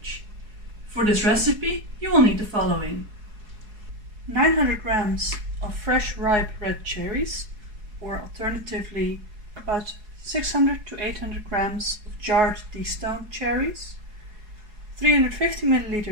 For this recipe you will need the following: 900 grams of fresh ripe red cherries, or alternatively about 600 to 800 grams of jarred destoned cherries, 350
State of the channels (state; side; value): late; left; 4.7 ms